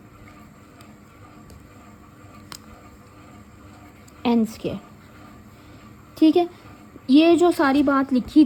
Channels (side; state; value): both; identical; correlation 1.00